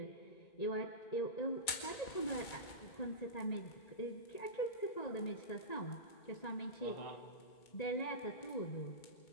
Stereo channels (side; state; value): right; late; 2.3 ms